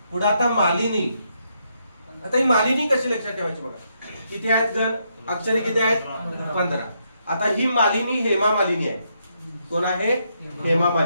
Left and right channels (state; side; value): inverted; both; correlation -0.77